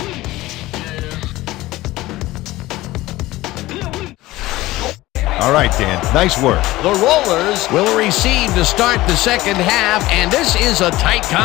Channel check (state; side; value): quieter; right; 17.9 dB